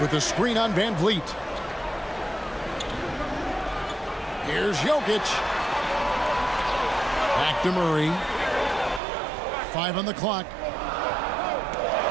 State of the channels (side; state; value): left; drops out; at 9.0 s